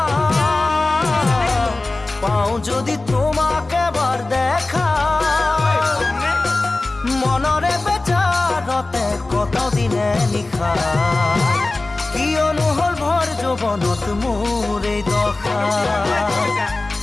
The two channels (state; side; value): quieter; right; 3.1 dB